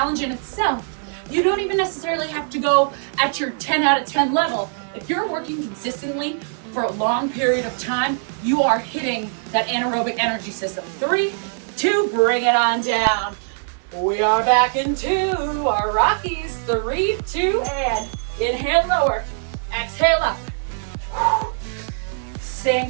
in itself. You don't even necessarily have to go at your 10 out of 10 level. If you're working consistently for a long period of time, you are hitting that anaerobic energy system. 3, 2, bring it on down. We are back into our Rockies. 3, 2, and inhale lower, exhale up. Staying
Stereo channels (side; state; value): left; silent; 64 dB below the other